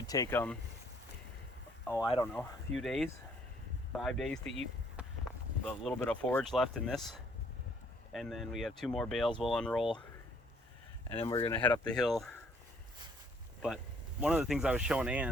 take them, I don't know, a few days, 5 days to eat the little bit of forage left in this. And then we have 2 more bales we'll unroll, and then we're gonna head up the hill. But one of the things I was showing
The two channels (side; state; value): both; normal; correlation 0.63